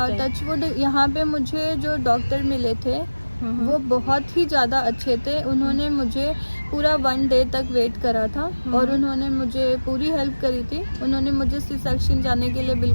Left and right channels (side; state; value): both; inverted; correlation -1.00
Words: टचवुड यहाँ पे मुझे जो डॉक्टर मिले थे वो बहुत ही ज़्यादा अच्छे थे। उन्होंने मुझे पूरा 1 डे तक वेट करा था और उन्होंने मुझे पूरी हेल्प करी थी। उन्होंने मुझे सी सेक्शन जाने के लिए